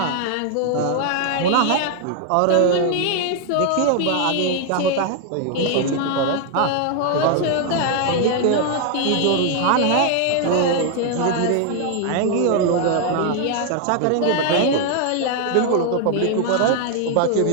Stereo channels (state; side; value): different; both; correlation 0.00